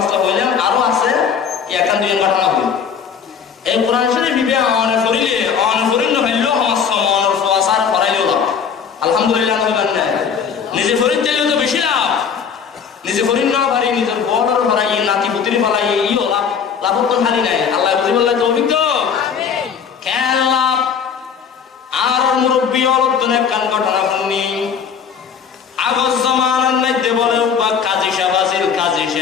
হইলাম আরো আছে এখান দুই ঘটনা হইল এই কোরআন শরীফ বিবে অন করিল হইলো আমার সমর ফাসার করাইলো আলহামদুলিল্লাহ না নিজে ফরিদ দিলেও তো বেশি লাভ নিজে ফরিদ না পারি নিজের বড়র ভরাই নাতি পুত্রী ফলাই ইও লাভ তো খালি নাই আল্লাহ বুঝি বললে তৌফিক তো আমিন কেন লাভ আর মুরব্বি অলতনে কান ঘটনা শুনি আগজ জামানার মধ্যে বলে বা কাজী সাহেব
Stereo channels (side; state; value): right; quieter; 7.0 dB